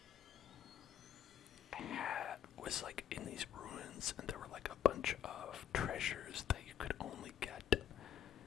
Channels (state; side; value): quieter; right; 9.7 dB